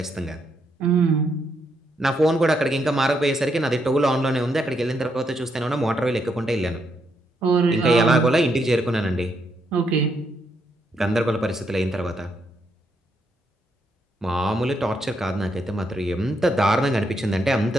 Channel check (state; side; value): normal; both; correlation 0.77